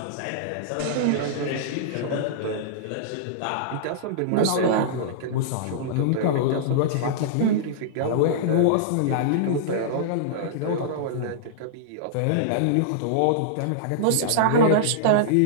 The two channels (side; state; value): both; different; correlation -0.02